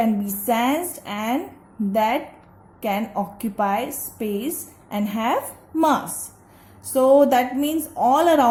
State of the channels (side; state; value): both; identical; correlation 1.00